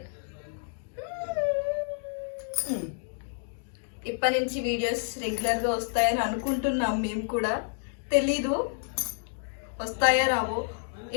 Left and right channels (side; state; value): right; silent; digital silence